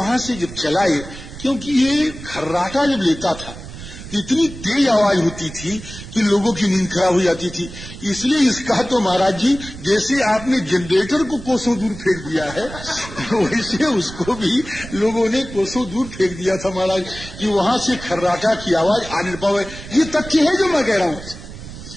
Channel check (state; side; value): noise; right; rumble, 13 dB below the sound